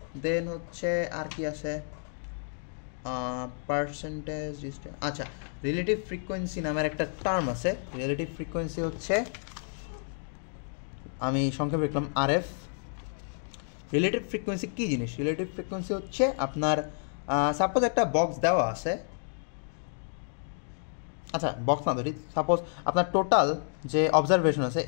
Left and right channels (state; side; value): silent; right; digital silence